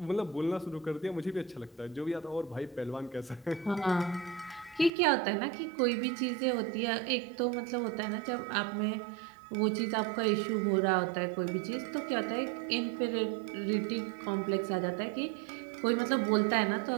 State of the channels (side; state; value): left; drops out; at 4.9 s